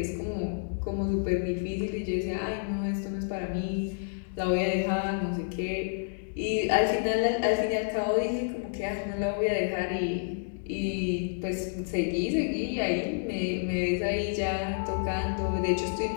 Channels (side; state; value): right; silent; 58 dB below the other